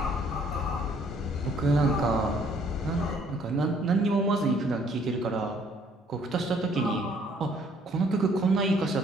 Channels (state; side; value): normal; both; correlation 0.62